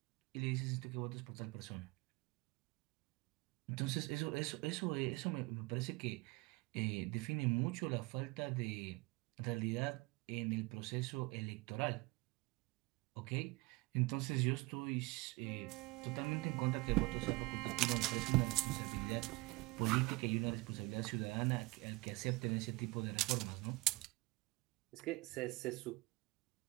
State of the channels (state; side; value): quieter; left; 23.6 dB